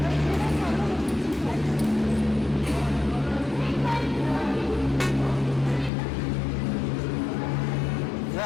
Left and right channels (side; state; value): right; drops out; at 5.9 s